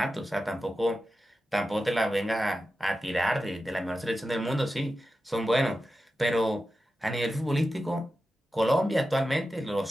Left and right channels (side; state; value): both; normal; correlation 0.92